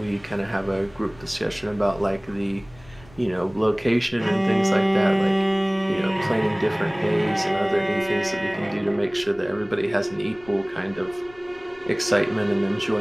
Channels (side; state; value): left; noise; rumble, 24 dB below the sound